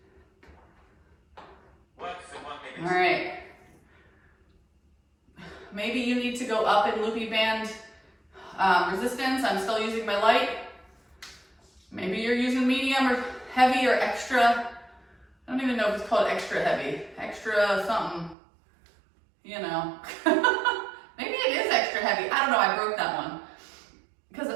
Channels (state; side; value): drops out; left; at 18.4 s